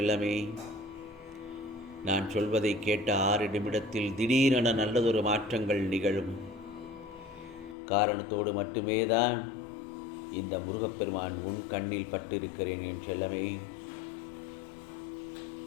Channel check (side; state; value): right; drops out; at 7.8 s